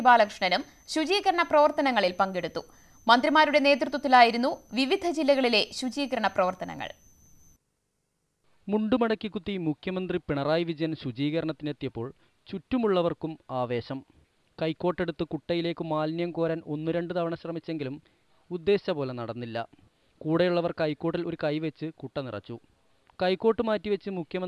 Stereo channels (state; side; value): identical; both; correlation 1.00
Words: ബാലകൃഷ്ണനും ശുചീകരണ പ്രവർത്തനങ്ങളിൽ പങ്കെടുത്തു. മന്ത്രിമാരുടെ നേതൃത്വത്തിലായിരുന്നു വിവിധ ജില്ലകളിലെ ശുചീകരണ പ്രവർത്തനങ്ങൾ. മുണ്ടുമടക്കിക്കുത്തി മുഖ്യമന്ത്രി പിണറായി വിജയൻ ശുചീകരണത്തിനെത്തിയപ്പോൾ ചുറ്റുമുള്ളവർക്കും ആവേശം. കൈക്കോട്ടെടുത്ത് കുട്ടയിലേക്ക് മാലിന്യം കോരാൻ 1-2 തവണ ശ്രമിച്ചെങ്കിലും ഉദ്ദേശിച്ച പോലെ നടന്നില്ല. കൂടെയുള്ളവർ കൈക്കോട്ടിൽ ഒരു കൈവച്ച് കുട്ട നിറച്ചു. കൈക്കോട്ട് മാറ്റിവെച്ച്